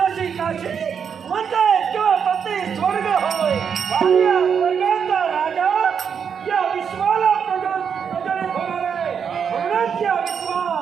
काशी म्हणताय केवळ पती स्वर्ग होय आणि या स्वर्गाचा राजा या विश्वाला प्रज्वलित होणार आहे. म्हणूनच या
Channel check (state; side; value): quieter; left; 7.1 dB